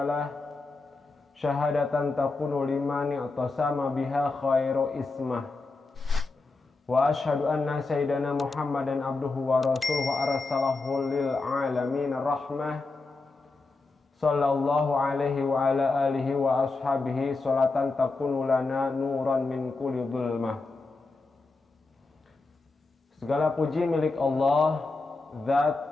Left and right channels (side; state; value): right; quieter; 3.6 dB